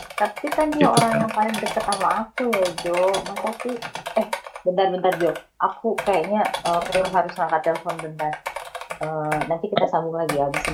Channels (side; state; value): both; identical; correlation 1.00